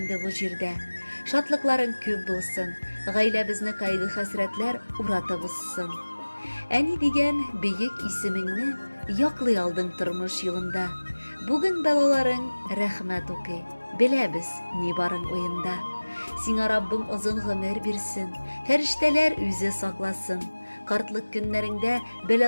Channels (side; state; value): both; inverted; correlation -1.00